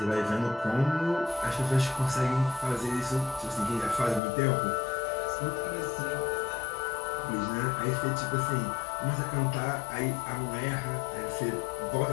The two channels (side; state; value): right; drops out; at 4.2 s